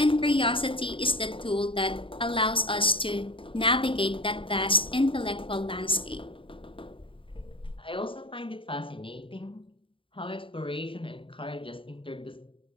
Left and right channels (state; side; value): late; right; 0.25 ms